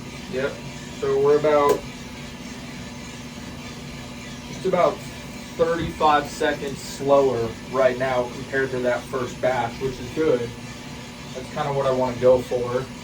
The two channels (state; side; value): identical; both; correlation 1.00